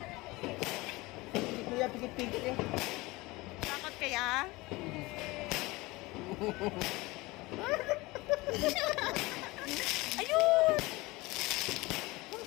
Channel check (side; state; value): right; quieter; 21.9 dB